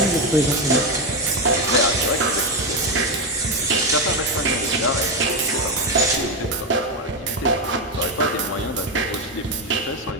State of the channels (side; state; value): both; normal; correlation 0.09